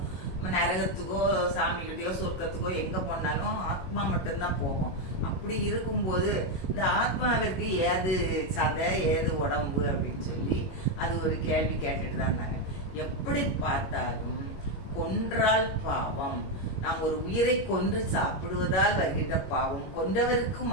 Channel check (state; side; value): late; right; 21 ms